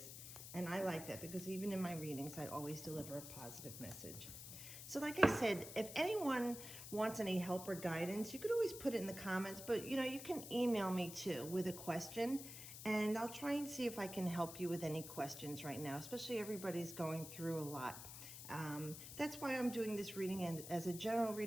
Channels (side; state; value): left; noise; hiss, 10 dB below the sound